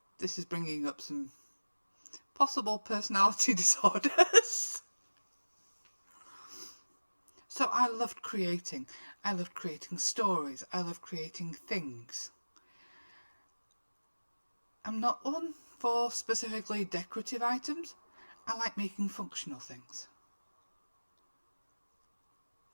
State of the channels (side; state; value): both; inverted; correlation -1.00